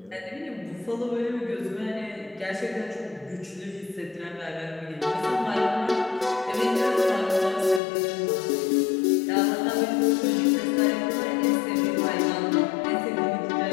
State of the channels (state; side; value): drops out; right; at 7.8 s